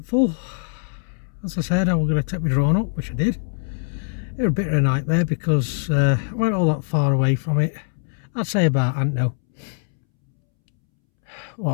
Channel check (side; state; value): right; silent; 64 dB below the other